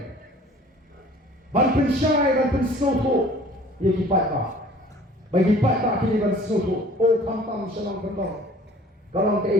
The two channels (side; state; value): both; normal; correlation 0.50